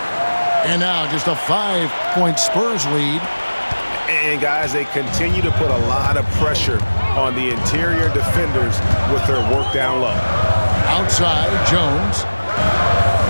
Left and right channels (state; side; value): inverted; both; correlation -1.00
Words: And now just a 5-point Spurs lead. And guys, they continue to put a lot of pressure on the interior defenders with their work down low. Outside, Jones.